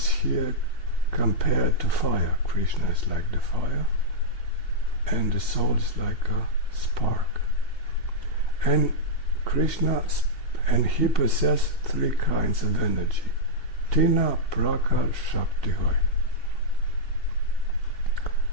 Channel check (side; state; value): right; late; 2.7 ms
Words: here compared to fire. Krishna is like the fire, and the soul is like a spark. And Krishna, and he possesses 3 kinds of energy. Tina Prakar Shakti Hoy.